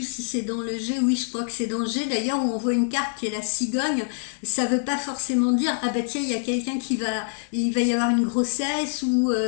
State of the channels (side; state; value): right; silent; digital silence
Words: si c'est dans le G, oui je crois que c'est dans le G d'ailleurs, où on voit une carte qui est la cigogne. Ça veut pas forcément dire ah bah tiens il y a quelqu'un il va y avoir une grossesse, ou